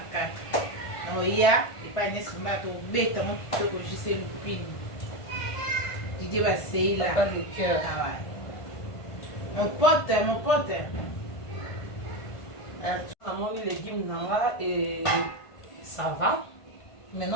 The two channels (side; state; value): right; late; 1.5 ms